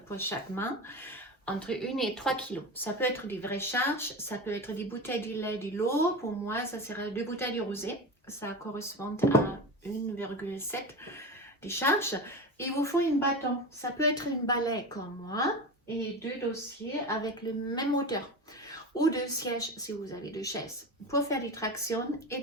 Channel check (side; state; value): both; normal; correlation 0.25